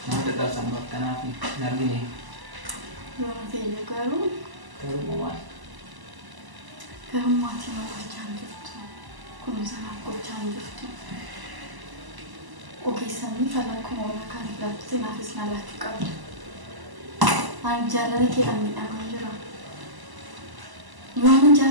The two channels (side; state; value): left; late; 1.0 ms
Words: nama dadhabsan bakkanaaf hin argine. Yoo ta'e garuu Garuu maal? garuu maatii nama gochaa hin jirtu. Kunuunsa naaf gochaa hin jirtu. Ogeessanii falan kuma waan kan ilaalchite naafis na laachuu qabdu. Ani jaalala keedhaan miidhamaa jira. Yoo ani